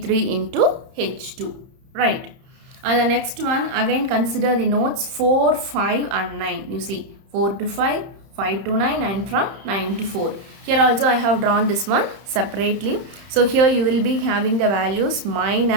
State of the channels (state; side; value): late; left; 30 ms